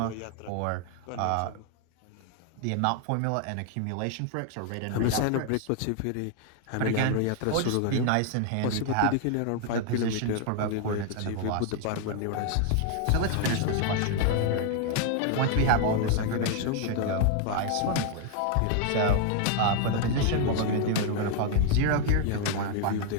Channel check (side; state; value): both; different; correlation 0.00